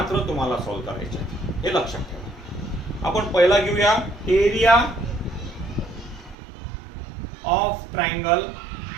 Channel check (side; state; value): left; drops out; at 6.4 s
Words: तुम्हाला सॉल्व्ह करायचे आहेत. हे लक्षात ठेवा. आपण पहिला घेऊया area of triangle